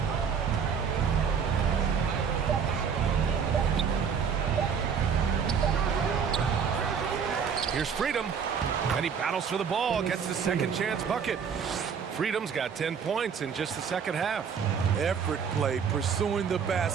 Here's Freedom, and he battles for the ball, gets the second chance bucket. Freedom's got 10 points in just the second half. Effort play, pursuing the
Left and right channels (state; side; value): quieter; left; 6.8 dB